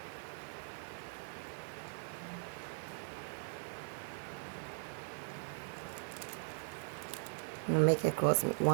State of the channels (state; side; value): silent; left; digital silence